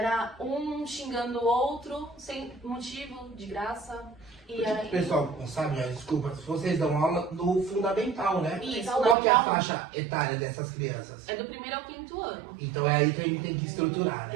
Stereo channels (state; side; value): drops out; left; at 9.2 s